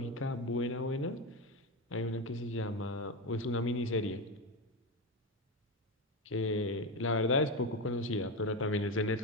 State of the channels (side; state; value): both; normal; correlation 0.14